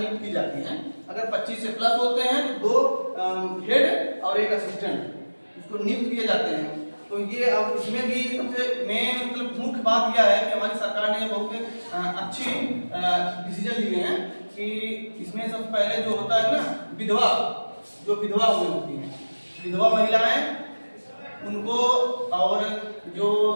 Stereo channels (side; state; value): both; inverted; correlation -1.00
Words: की जाती है। अगर 25 से प्लस होते हैं तो 2 हेड और एक असिस्टेंट इसको नियुक्त किए जाते हैं। तो ये अब इसमें भी सबसे मेन मतलब मुख्य बात यह है कि हमारी सरकार ने बहुत अच्छी डिसीजन लिए हैं कि इसमें सबसे पहले जो होता है ना विधवा हुई होती हैं, विधवा महिलाएं उनको और जो